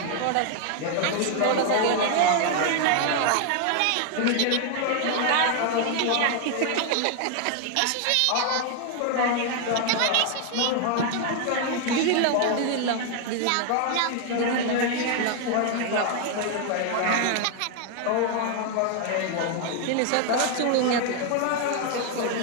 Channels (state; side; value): different; both; correlation 0.00